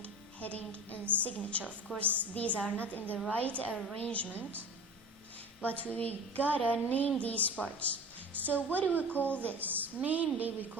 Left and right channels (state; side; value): normal; both; correlation 0.35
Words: heading, and signature. Of course, these are not in the right arrangement, but we gotta name these parts. So what do we call this? Mainly we